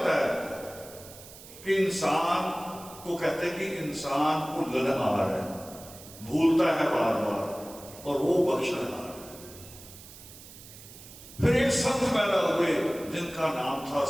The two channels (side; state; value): right; noise; hiss, 17 dB below the sound